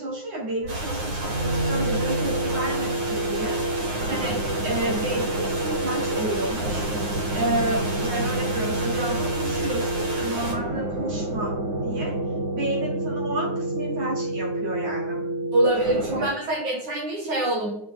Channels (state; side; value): late; left; 9.6 ms